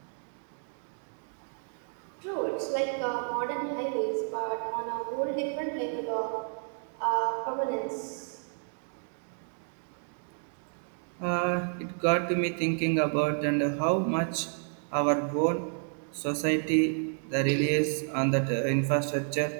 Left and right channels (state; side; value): silent; left; 57 dB below the other